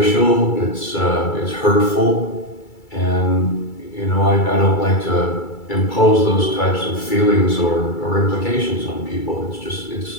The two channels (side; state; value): right; late; 2.3 ms